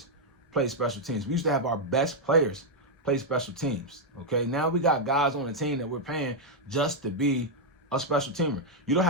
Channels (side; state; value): both; normal; correlation -0.03